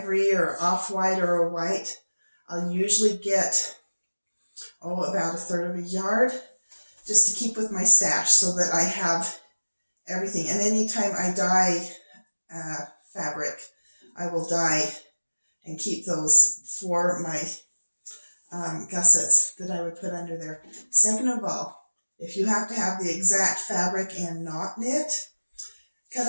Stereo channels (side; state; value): both; inverted; correlation -1.00